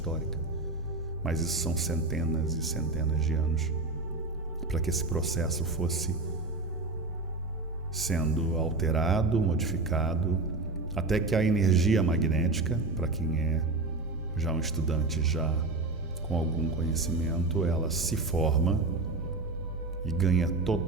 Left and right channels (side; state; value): left; quieter; 3.3 dB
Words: mas isso são centenas e centenas de anos para que esse processo fosse sendo alterado, modificado, até que a energia magnética, para quem é já um estudante já com algum conhecimento, ela se forma e ganha